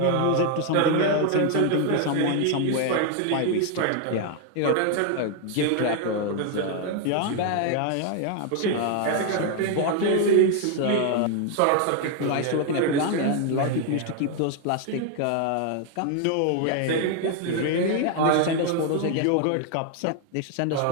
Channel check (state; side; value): different; both; correlation 0.00